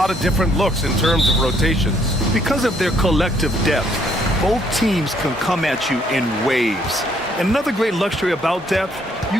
of different looks in terms of rotations. Because of their collective depth, both teams can come at you in waves. And another great luxury about depth, you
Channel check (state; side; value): normal; both; correlation 0.67